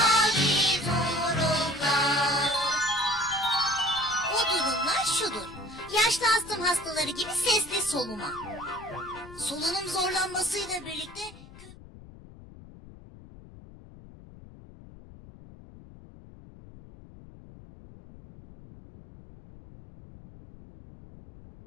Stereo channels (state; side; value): noise; left; rumble, 19 dB below the sound